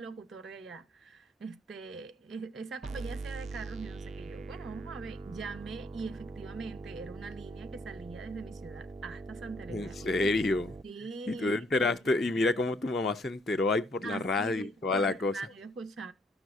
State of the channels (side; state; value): both; normal; correlation 0.67